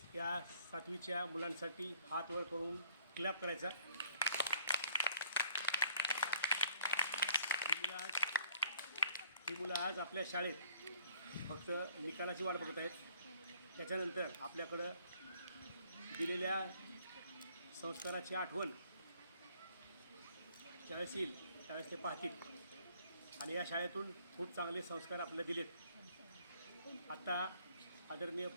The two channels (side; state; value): both; inverted; correlation -0.60